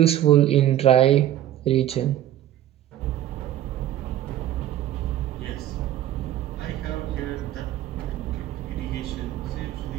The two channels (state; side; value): quieter; left; 12.5 dB